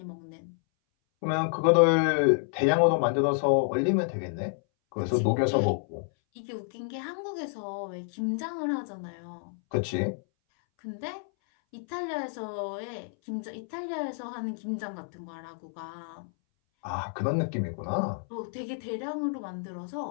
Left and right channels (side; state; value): right; silent; 58 dB below the other